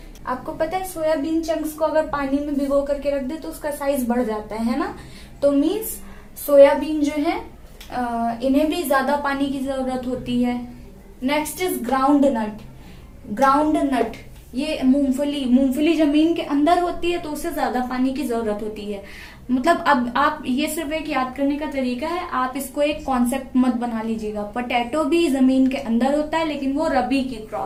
आपको पता है सोयाबीन चंक्स को अगर पानी में भिगो करके रख दे तो उसका साइज बढ़ जाता है ना. तो मीन्स सोयाबीन जो है इन्हें भी ज्यादा पानी की जरूरत होती है. Next is groundnut. Groundnut ये मूंगफली जमीन के अंदर होती है, तो उसे ज्यादा पानी की जरूरत होती है. मतलब अब आप ये सिर्फ एक याद करने का तरीका है, आप इसको एक कॉन्सेप्ट मत बना लीजिएगा. पोटैटो भी जमीन के अंदर होता है, लेकिन वो रबी की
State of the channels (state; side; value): identical; both; correlation 1.00